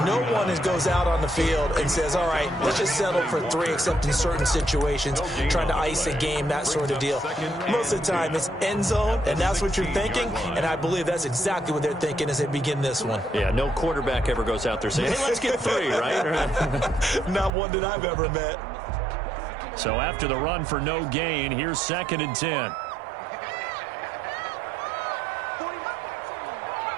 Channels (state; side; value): drops out; left; at 17.5 s